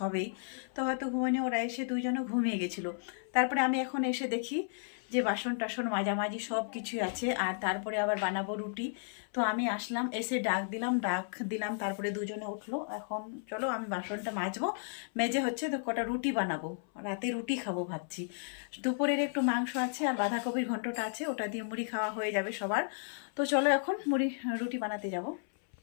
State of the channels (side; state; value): right; silent; 55 dB below the other